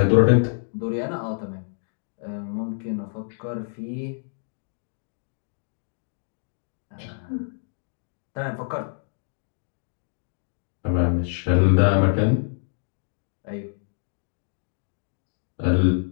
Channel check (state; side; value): silent; right; digital silence